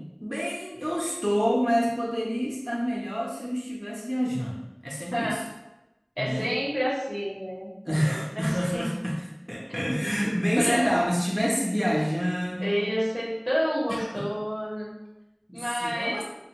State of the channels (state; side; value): identical; both; correlation 1.00